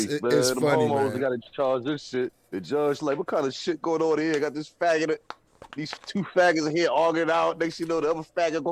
funny, man. They got to charge this shit. The judge like, what kind of shit going on here? Got this faggot, these two faggots in here arguing out. Next you know, the other faggot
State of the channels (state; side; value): identical; both; correlation 1.00